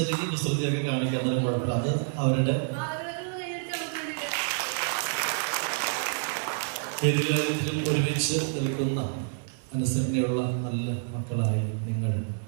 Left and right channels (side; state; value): left; silent; digital silence